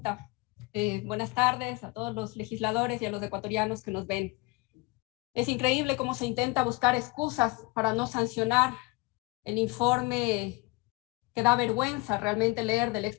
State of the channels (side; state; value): right; quieter; 24.3 dB